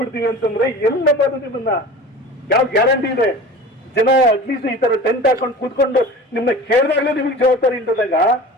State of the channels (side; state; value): both; normal; correlation 0.37